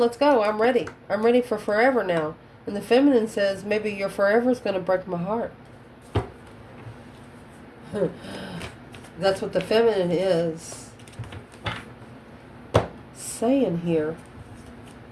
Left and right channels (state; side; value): identical; both; correlation 1.00